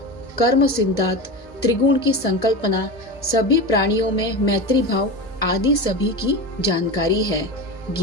कर्म सिद्धांत, त्रिगुण की संकल्पना, सभी प्राणियों में मैत्री भाव आदि सभी की जानकारी है।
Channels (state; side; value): normal; both; correlation 0.25